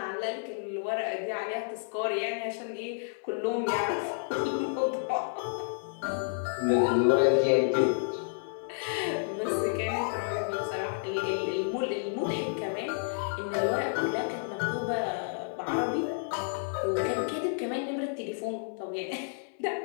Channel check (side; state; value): right; silent; 57 dB below the other